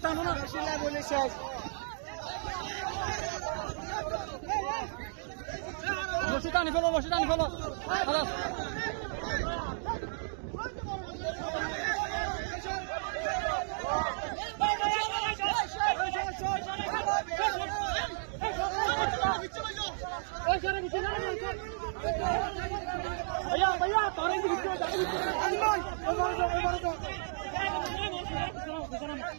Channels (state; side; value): silent; left; digital silence